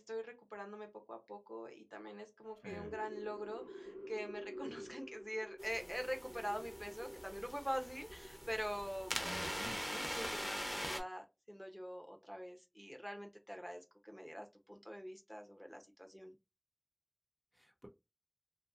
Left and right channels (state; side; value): identical; both; correlation 1.00